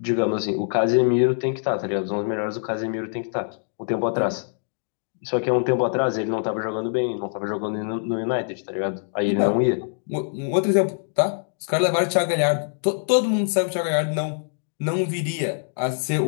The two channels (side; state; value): right; silent; digital silence